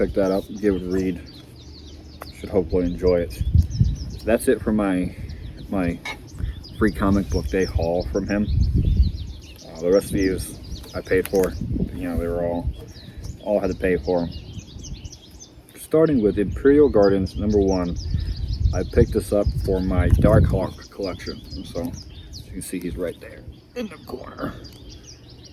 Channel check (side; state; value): both; identical; correlation 1.00